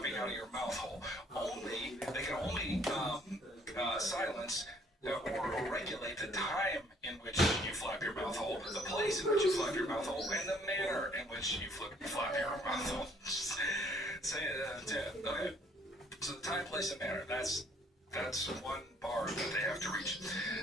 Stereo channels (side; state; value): both; normal; correlation 0.62